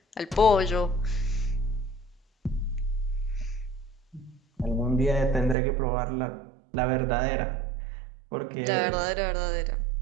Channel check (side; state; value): left; drops out; at 5.6 s